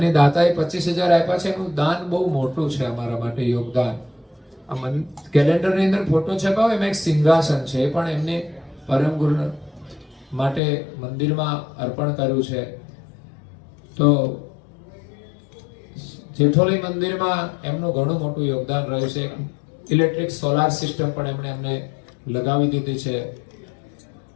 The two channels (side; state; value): right; drops out; at 10.6 s